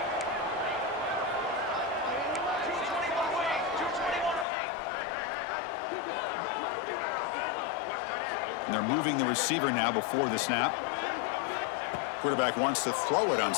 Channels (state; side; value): drops out; right; at 4.5 s